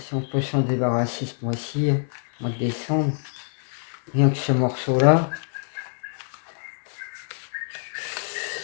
on peut s'en débarrasser ce mois-ci, mois de décembre, rien que ce morceau-là.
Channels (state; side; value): silent; right; 61 dB below the other